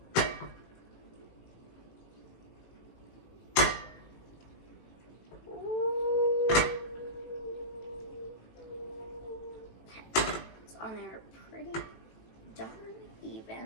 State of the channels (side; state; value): right; late; 18 ms